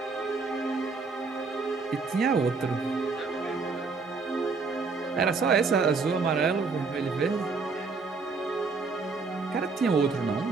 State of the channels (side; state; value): left; quieter; 4.4 dB